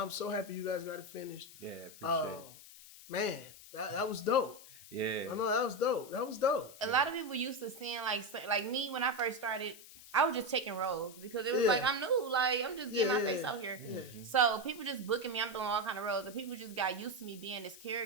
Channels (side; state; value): left; noise; hiss, 18 dB below the sound